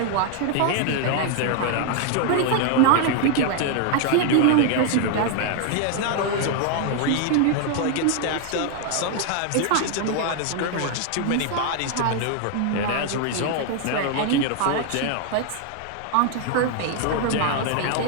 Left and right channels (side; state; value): both; different; correlation 0.00